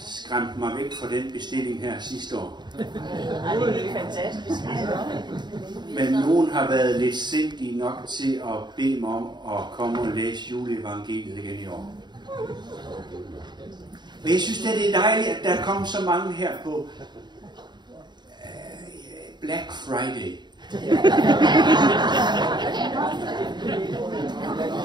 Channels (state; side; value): late; left; 0.21 ms